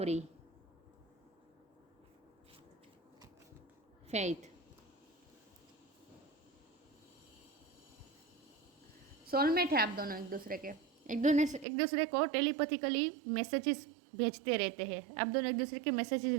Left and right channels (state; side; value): drops out; left; at 11.7 s